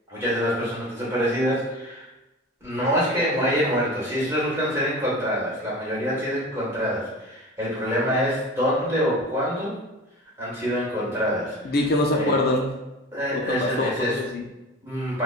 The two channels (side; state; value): both; normal; correlation 0.35